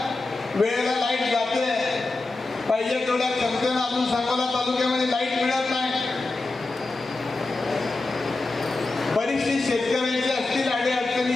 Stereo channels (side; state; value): right; quieter; 3.3 dB